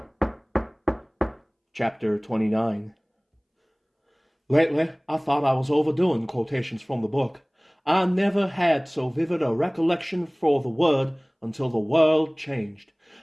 Chapter 29. Lately, I thought I was overdoing quotations from the book. I never had so vivid a recollection for the word until the world changed.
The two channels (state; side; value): identical; both; correlation 1.00